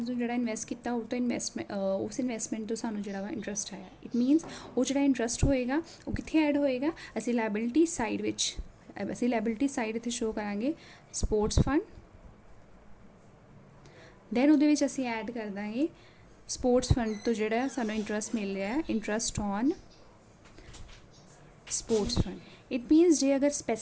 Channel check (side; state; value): both; identical; correlation 1.00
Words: ਨੂੰ ਜਿਹੜਾ ਇਨਵੈਸਟ ਕੀਤਾ ਉਹ ਤੋਂ ਉਸ ਇਨਵੈਸਟਮੈਂਟ ਤੋਂ ਸਾਨੂੰ ਜਿਹੜਾ ਵਾ ਇੰਟਰਸਟ ਆਇਆ ਇਟ ਮੀਨਸ ਉਹ ਜਿਹੜਾ ਇੰਟਰਸਟ ਹੋਏਗਾ ਉਹ ਕਿੱਥੇ ਐਡ ਹੋਏਗਾ ਅਸੀਂ ਲਾਇਬਿਲਿਟੀ ਸਾਈਡ ਵਿੱਚ ਅਸੀਂ ਲਾਇਬਿਲਿਟੀ ਸਾਈਡ ਇੱਥੇ ਸ਼ੋ ਕਰਾਂਗੇ ਸਪੋਰਟਸ ਫੰਡ ਦੈਨ ਉਹਦੇ ਵਿੱਚ ਅਸੀਂ ਐਡ ਕਰ ਦਾਂਗੇ ਸਪੋਰਟਸ ਫੰਡ ਤੋਂ ਜਿਹੜਾ ਸਾਨੂੰ ਇੰਟਰਸਟ ਮਿਲ ਰਿਹਾ ਹੈ interest on sports fund it means ਜੇ ਅਗਰ